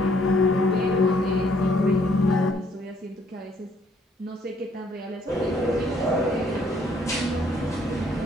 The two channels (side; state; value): both; normal; correlation 0.65